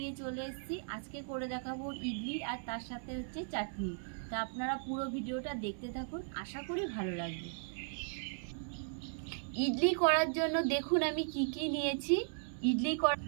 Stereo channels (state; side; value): silent; left; digital silence